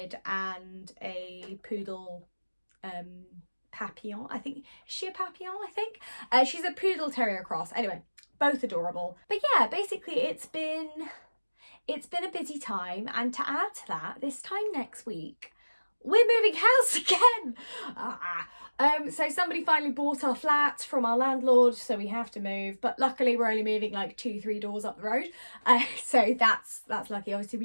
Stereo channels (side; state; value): both; inverted; correlation -1.00